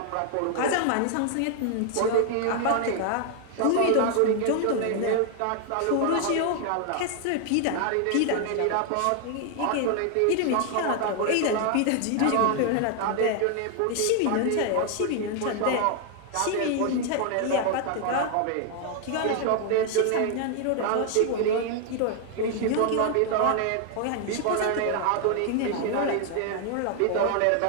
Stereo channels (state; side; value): different; both; correlation 0.00